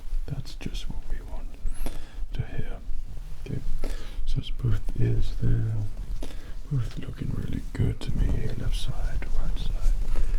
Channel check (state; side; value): identical; both; correlation 1.00